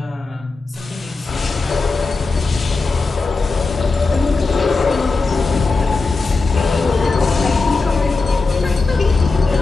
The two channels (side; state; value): right; quieter; 3.8 dB